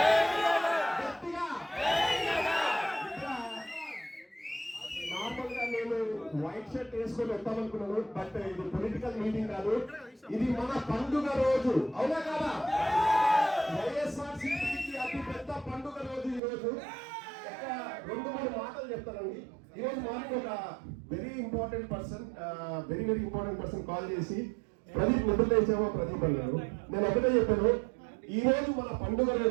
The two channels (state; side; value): drops out; left; at 16.4 s